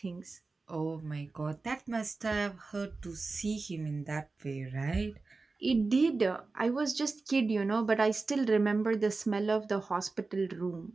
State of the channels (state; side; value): quieter; left; 3.8 dB